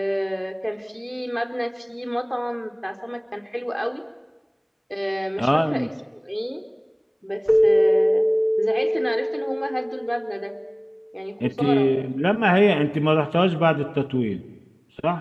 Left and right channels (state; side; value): identical; both; correlation 1.00